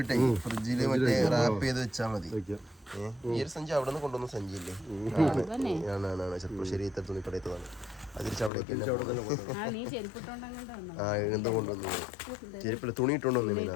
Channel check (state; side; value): drops out; right; at 8.5 s